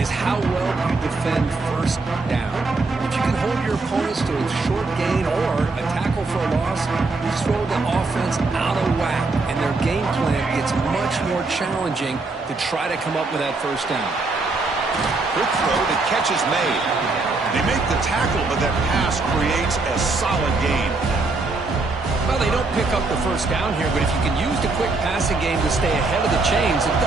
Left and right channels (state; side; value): quieter; left; 3.6 dB